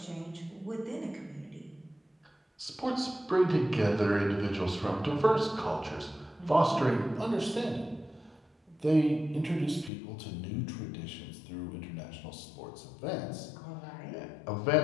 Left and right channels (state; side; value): drops out; right; at 9.9 s